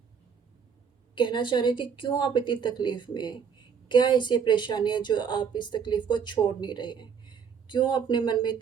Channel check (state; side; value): quieter; left; 6.8 dB